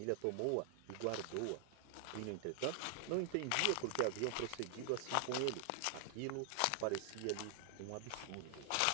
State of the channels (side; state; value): both; different; correlation 0.00